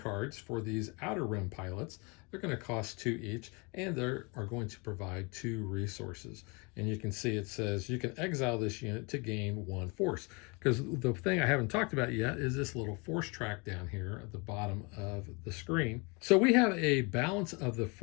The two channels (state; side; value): quieter; right; 30.0 dB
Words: for these Outer Rim pilots. They're going to cost 2 each, and they are going to provide 2 resources. And you can see it says you can exile this unit to gain 1 force. Because the thing I haven't talked about yet is this little force track down here at the bottom of the screen. So we have a balance of the